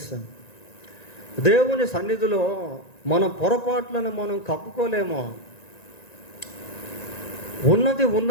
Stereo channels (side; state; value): right; late; 1.9 ms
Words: దేవుని సన్నిధిలో మన పొరపాట్లను మనం కప్పుకోలేమో. ఉన్నది